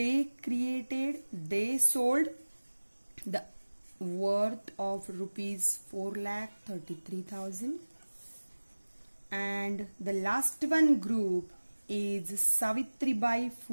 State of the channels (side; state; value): both; inverted; correlation -1.00